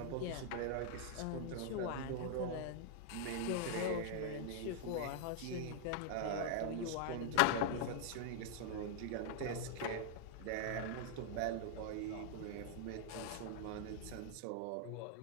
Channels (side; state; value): both; different; correlation 0.00